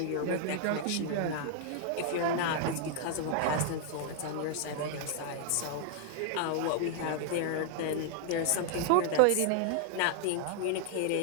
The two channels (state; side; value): different; both; correlation 0.00